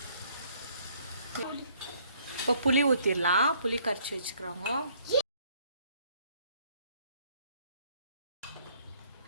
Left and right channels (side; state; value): both; inverted; correlation -0.63